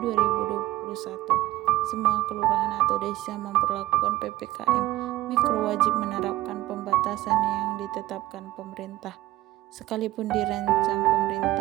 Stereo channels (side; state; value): left; quieter; 16.3 dB